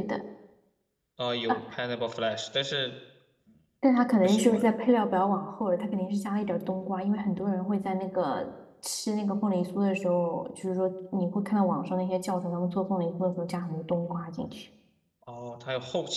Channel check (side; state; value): both; identical; correlation 1.00